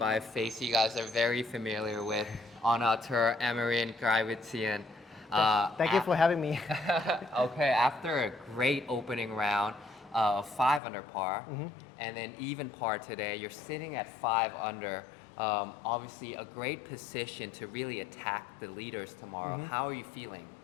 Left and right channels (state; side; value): drops out; right; at 10.8 s